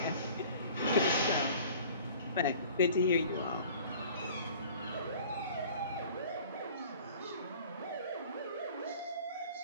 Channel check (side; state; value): both; inverted; correlation -0.47